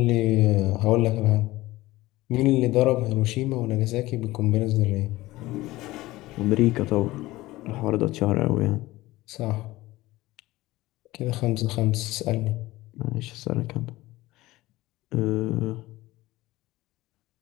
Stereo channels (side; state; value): right; quieter; 18.3 dB